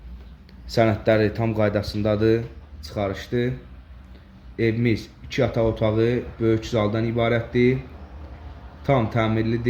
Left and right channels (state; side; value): identical; both; correlation 1.00